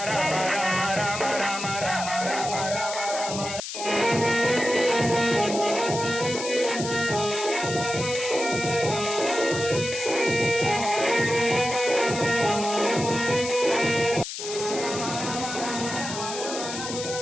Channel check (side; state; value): left; noise; hiss, 7 dB below the sound